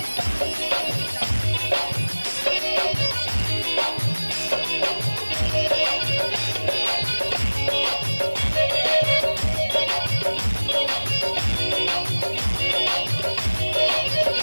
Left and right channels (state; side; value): inverted; both; correlation -1.00